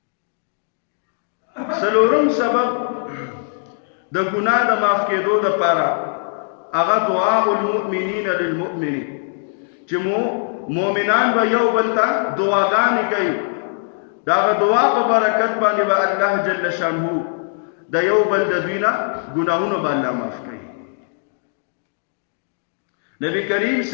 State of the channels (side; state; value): right; silent; digital silence